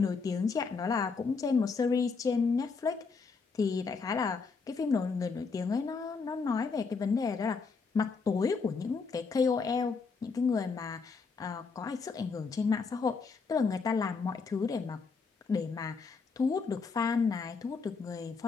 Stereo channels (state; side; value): quieter; right; 4.8 dB